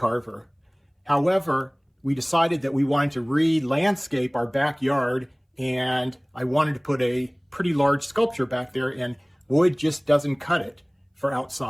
However, we decided that we wanted to re-landscape our backyard, and I wanted to put a pretty large sculpture back there, and wood just doesn't cut it for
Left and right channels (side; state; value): both; identical; correlation 1.00